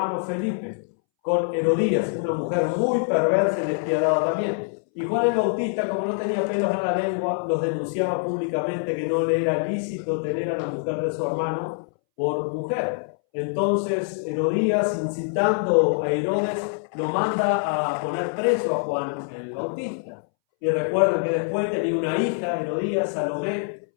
Felipe, con Herodías, una mujer muy perversa y despiadada también. Y Juan el Bautista, como no tenía pelos en la lengua, los denunciaba públicamente que no le era lícito tener a la mujer de su hermano por mujer. Entonces Herodías, incitando a Herodes, lo manda a poner preso a Juan el Bautista. Y recuerden que después tenía una hija, Herodías, Salomé,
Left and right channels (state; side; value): silent; right; 62 dB below the other